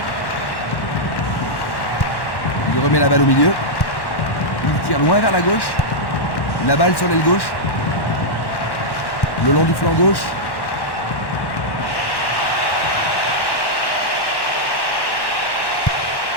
Il remet la balle au milieu. Il tire loin vers la gauche. La balle sur l'aile gauche. Le long du flanc gauche.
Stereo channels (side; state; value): right; late; 1.1 ms